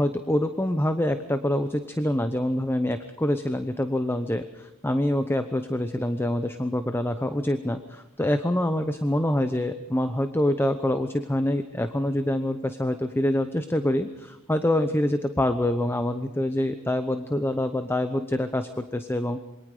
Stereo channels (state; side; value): normal; both; correlation 0.88